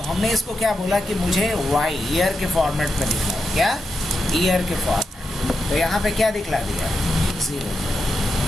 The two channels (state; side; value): normal; both; correlation 0.86